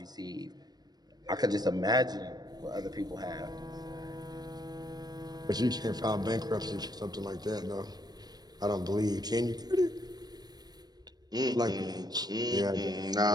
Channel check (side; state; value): left; late; 0.19 ms